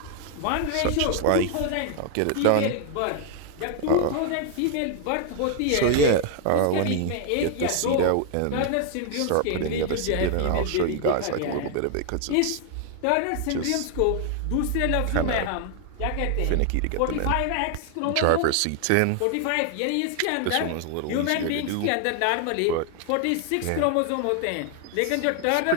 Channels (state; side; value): different; both; correlation 0.00